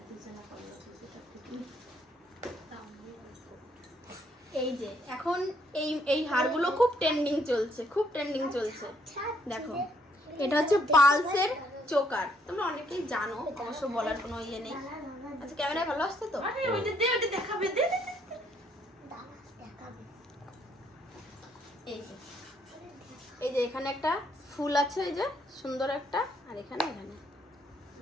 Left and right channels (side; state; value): both; normal; correlation 0.70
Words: এই যে এখন এই এই হারগুলো খুব ট্রেন্ডিং চলছে, খুব ট্রেন্ডিং চলছে। দেখো এটা হচ্ছে পালসের চোকার, তোমরা অনেকেই জানো, অবশ্য বলার কোনো ইয়ে নেই। আচ্ছা ক্যামেরায় ভালো আসছে তো? দেখাবে এই যে এখানে একটা ফুল আছে, এই যে সুন্দর একটা, আর এখানে এখানে